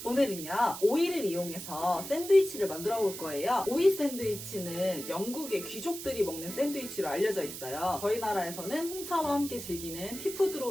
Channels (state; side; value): noise; right; hiss, 9 dB below the sound